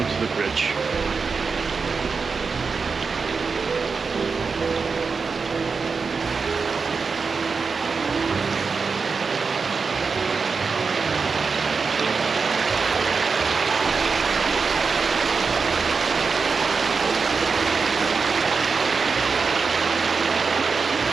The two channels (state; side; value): quieter; left; 4.9 dB